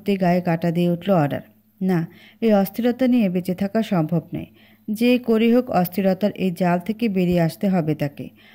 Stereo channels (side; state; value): both; identical; correlation 1.00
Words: গায়ে কাঁটা দিয়ে উঠল অরার। না, এই অস্থিরতা নিয়ে বেঁচে থাকা সম্ভব নয়। যে করেই হোক অস্থিরতার এই জাল থেকে বেরিয়ে আসতে হবে তাকে।